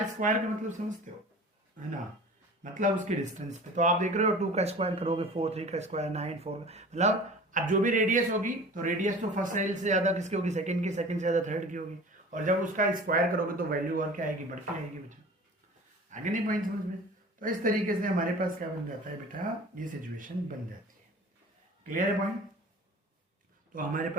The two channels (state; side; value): normal; both; correlation 0.41